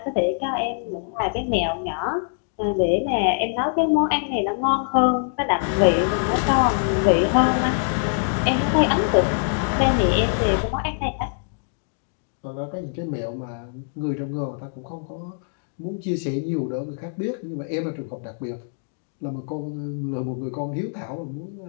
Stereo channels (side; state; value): right; silent; digital silence